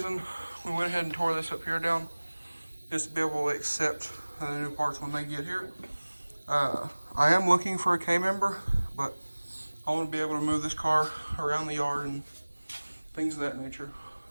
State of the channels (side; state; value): both; inverted; correlation -1.00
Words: we went ahead and tore this up here down is to be able to accept the new parts when they get here. I am looking for a K-member, but I want to be able to move this car around the yard and things of that nature.